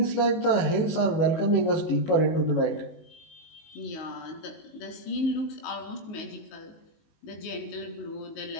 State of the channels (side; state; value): right; late; 19 ms